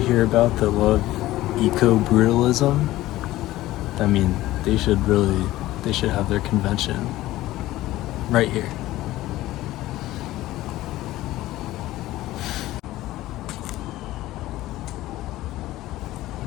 about that love eco-brutalism. I mean, they should have their convention right here.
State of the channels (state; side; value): quieter; right; 16.2 dB